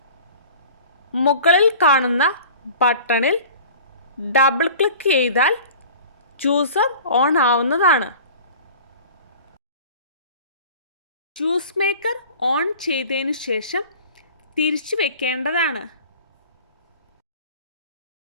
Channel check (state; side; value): inverted; both; correlation -0.42